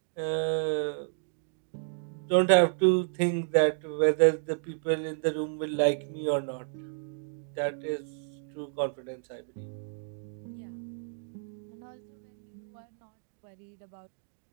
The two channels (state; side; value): silent; left; digital silence